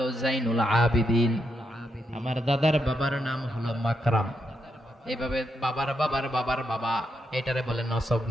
জাইনুল আবিদিন, আমার দাদার বাবার নাম হলো মাকরাম। এইভাবে বাবার বাবার বাবার বাবা, এটারে বলে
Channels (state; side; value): normal; both; correlation 0.82